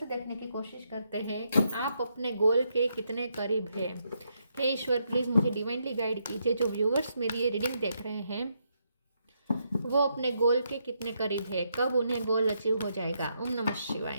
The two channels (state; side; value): inverted; both; correlation -0.79